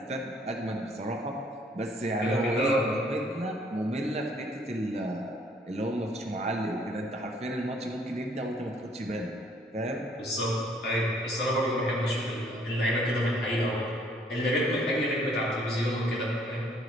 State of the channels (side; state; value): both; normal; correlation 0.62